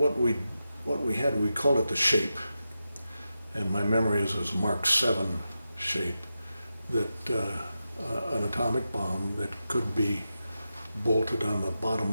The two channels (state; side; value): inverted; both; correlation -0.90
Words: we had, we called it the shape. And my memory is a Mark 7 shape, that an atomic bomb that could be bolted on the